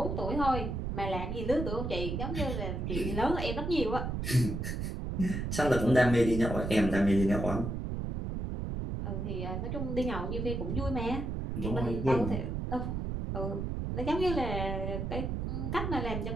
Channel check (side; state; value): right; noise; rumble, 3 dB below the sound